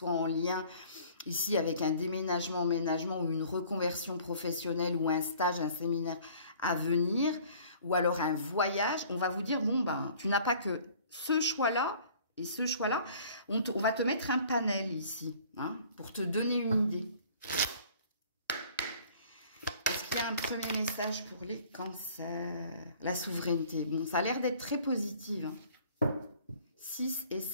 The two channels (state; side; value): inverted; both; correlation -0.52